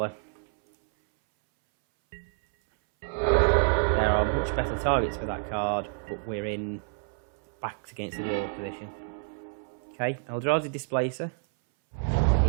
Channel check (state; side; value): silent; left; 59 dB below the other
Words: There are much better targets for that card, but we're in backs against the wall position. Okay, Eldrazi Displacer